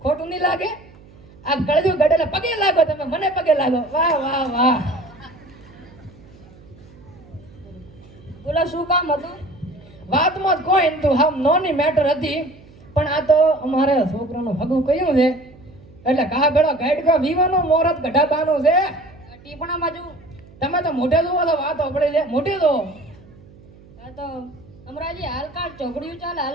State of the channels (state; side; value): noise; right; hum, 24 dB below the sound